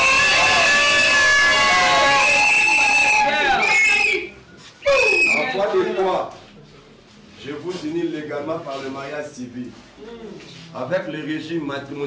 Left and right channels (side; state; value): both; identical; correlation 1.00